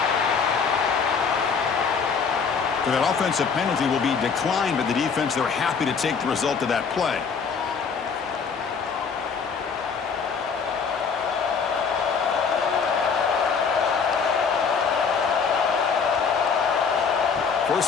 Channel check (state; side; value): quieter; right; 5.8 dB